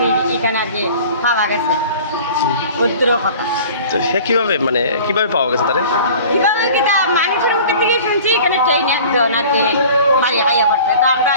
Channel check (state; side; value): inverted; both; correlation -0.44